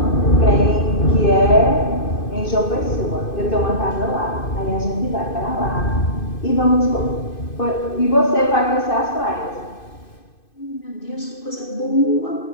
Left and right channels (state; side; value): late; right; 2.5 ms